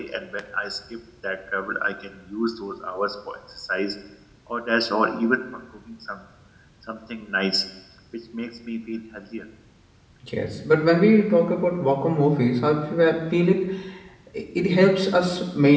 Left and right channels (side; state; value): both; identical; correlation 1.00